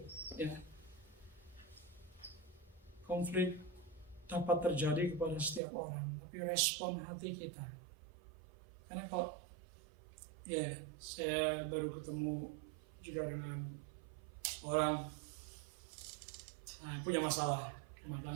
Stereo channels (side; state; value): left; drops out; at 5.6 s